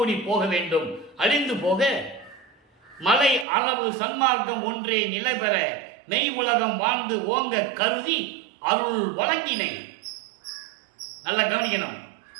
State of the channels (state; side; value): drops out; left; at 3.5 s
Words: போக வேண்டும், அழிந்து போக. மலை அளவு சன்மார்க்கம் ஒன்றே நிலை பெற மெய் உலகம் வாழ்ந்து ஓங்க கருதி அருள் வழங்கினை. நல்லா கவனிக்கணும்.